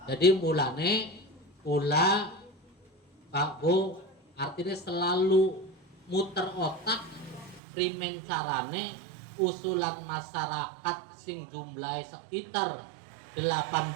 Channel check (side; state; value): left; drops out; at 7.6 s